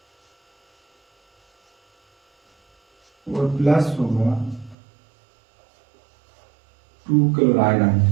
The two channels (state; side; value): drops out; left; at 4.8 s